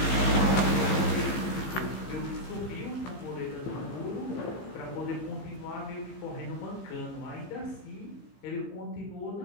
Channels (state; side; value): late; right; 15 ms